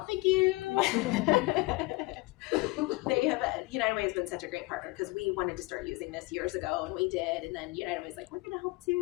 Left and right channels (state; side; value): quieter; right; 22.5 dB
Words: Thank you. United Way has been such a great partner because we wanted to start using this years ago, and we did. And then United Way's like, we're going to help